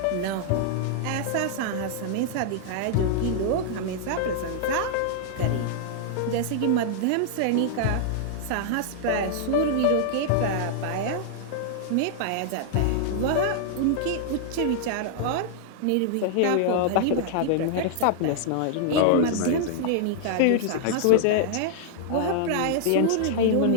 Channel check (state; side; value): different; both; correlation -0.01